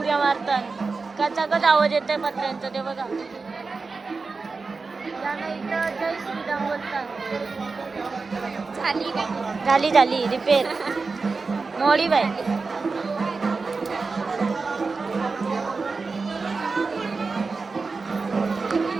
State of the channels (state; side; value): quieter; left; 4.3 dB